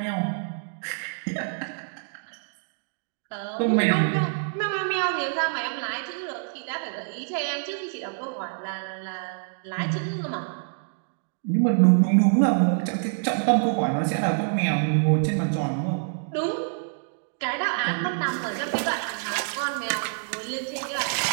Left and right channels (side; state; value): left; silent; digital silence